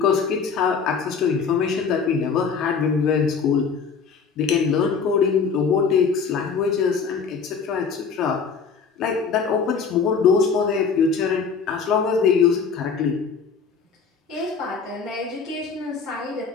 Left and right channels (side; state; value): right; quieter; 5.7 dB